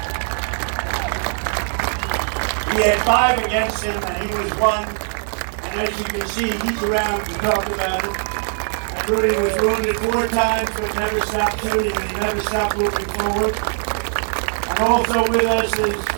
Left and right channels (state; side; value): silent; left; 62 dB below the other